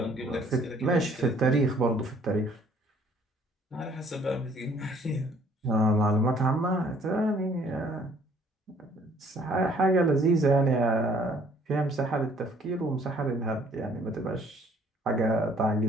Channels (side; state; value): both; normal; correlation 0.60